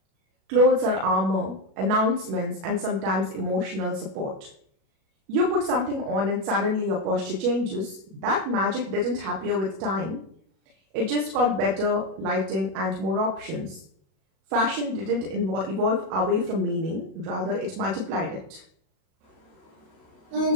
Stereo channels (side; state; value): left; late; 37 ms